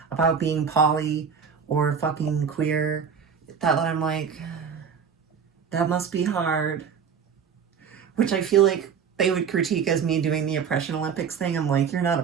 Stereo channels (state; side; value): quieter; left; 6.8 dB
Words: about being poly or fucking queer that I'm like, that must be hard. Which I feel like they would critique as me doing the Oppression Olympics thing. I'm like, you're not